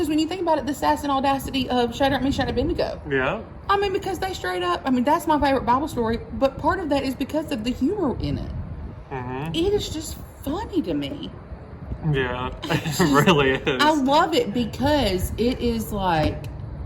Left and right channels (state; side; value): identical; both; correlation 1.00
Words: when you think about it, the sass and audacity of Shadrach, Meshach, and Abednego. Yeah. I mean, because they straight up, I mean, that's my favorite Bible story, but part of that is because of the humor in it. Mm-hmm. It is just funny to me. Yeah, it really is. I love it because it is like,